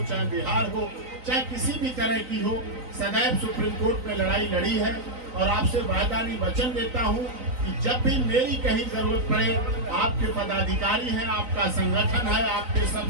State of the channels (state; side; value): late; left; 3.9 ms